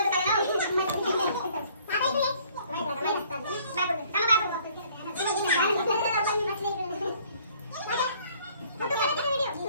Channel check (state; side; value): inverted; both; correlation -0.59